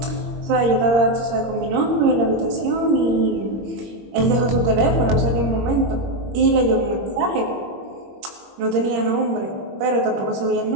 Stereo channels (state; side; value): late; left; 21 ms